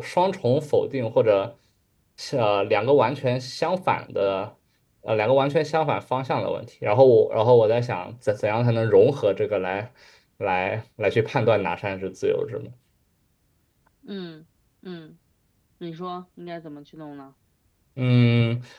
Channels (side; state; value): both; identical; correlation 1.00